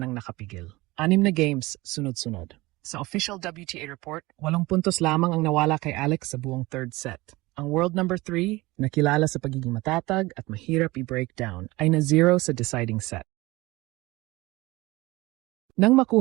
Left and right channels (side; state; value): left; quieter; 21.0 dB